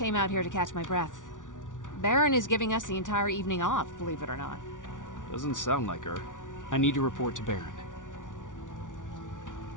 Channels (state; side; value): late; right; 0.87 ms